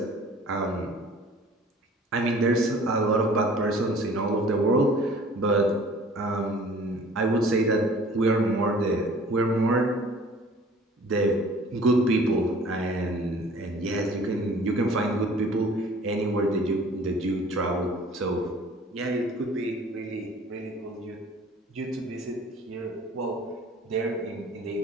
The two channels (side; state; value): both; normal; correlation 0.49